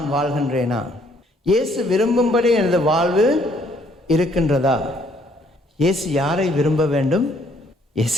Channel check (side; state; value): both; normal; correlation 0.65